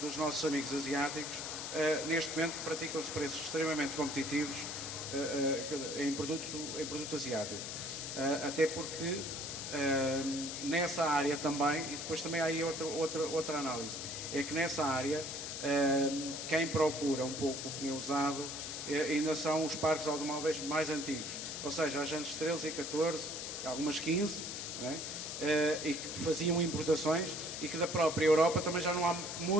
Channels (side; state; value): left; noise; hiss, 6 dB below the sound